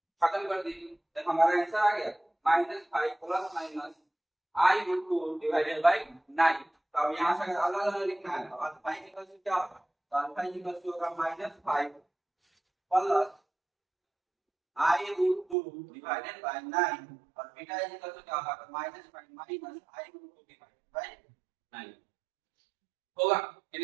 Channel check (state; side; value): drops out; left; at 15.6 s